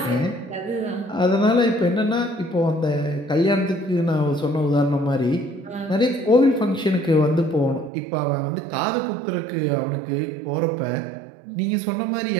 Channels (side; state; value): left; drops out; at 7.9 s